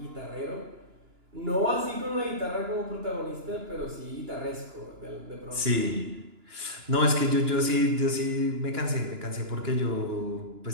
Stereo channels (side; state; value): left; late; 2.9 ms